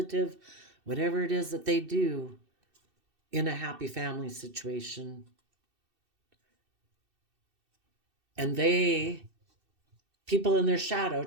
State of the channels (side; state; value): left; late; 2.6 ms